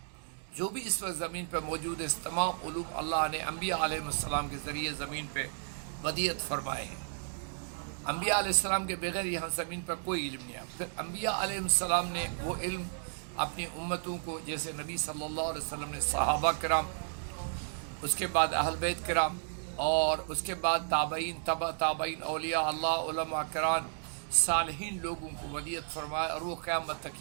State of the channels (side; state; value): left; silent; digital silence